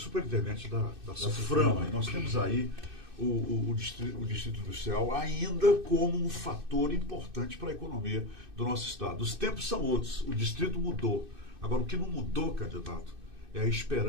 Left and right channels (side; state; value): left; late; 2.6 ms